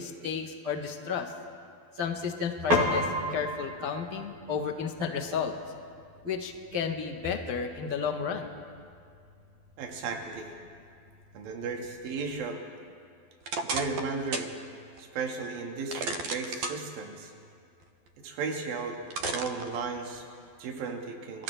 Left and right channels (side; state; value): left; late; 12 ms